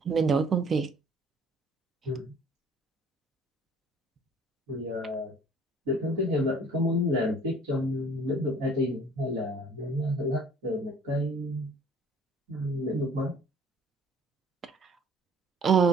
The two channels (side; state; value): both; normal; correlation 0.54